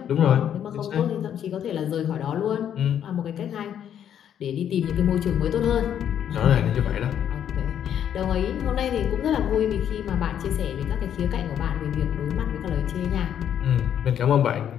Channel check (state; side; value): quieter; right; 9.5 dB